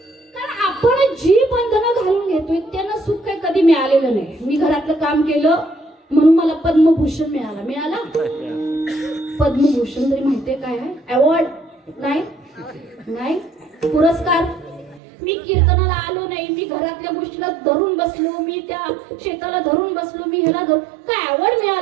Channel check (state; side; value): drops out; left; at 15.0 s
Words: मिळालेलं नाही. मी घरातलं काम केलं म्हणून मला पद्मभूषण मिळाला. पद्मभूषण तरी माहितीये काय आहे? अवॉर्ड नाही, पुरस्कार. मी कीर्तनाला आलो नाही, मी घरातल्या गोष्टीला धरून बसलो, मी त्या शेताला धरून बसलो, मी ह्याला धरून, काय अवॉर्ड